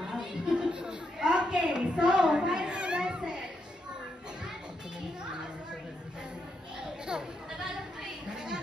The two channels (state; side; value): normal; both; correlation 0.81